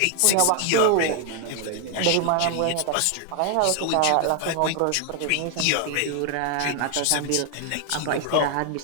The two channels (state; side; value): different; both; correlation 0.00